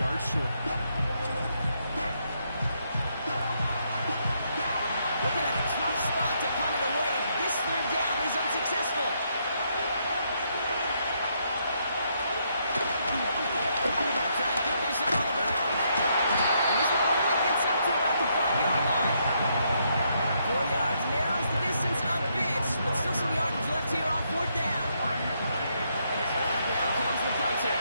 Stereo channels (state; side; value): inverted; both; correlation -0.75